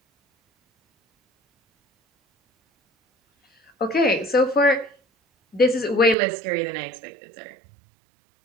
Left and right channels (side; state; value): left; drops out; at 6.2 s